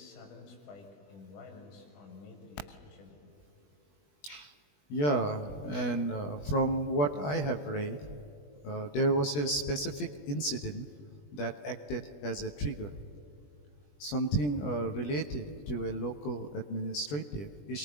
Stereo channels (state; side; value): late; right; 20 ms